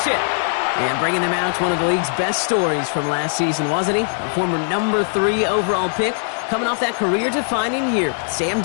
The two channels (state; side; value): silent; right; digital silence